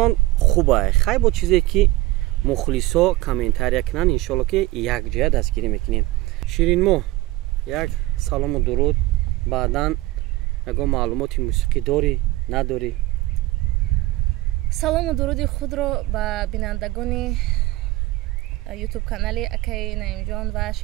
хубай. хай бо чизе ки мухлисо комментария кунанд, иншоалло ки якҷоя дастгирӣ мекунем. ширинмоҳ, як салому дуруд. баъдан ягон маълумоти мусиқӣ дорӣ, надорӣ? салому дуруди худро ба бинандагони ютуб канали акаи наимҷон ва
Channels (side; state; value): left; quieter; 18.6 dB